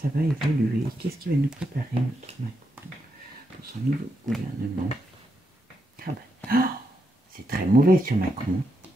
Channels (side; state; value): both; normal; correlation 0.83